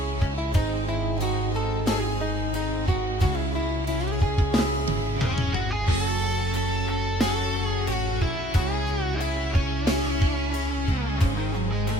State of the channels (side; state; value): both; normal; correlation 0.58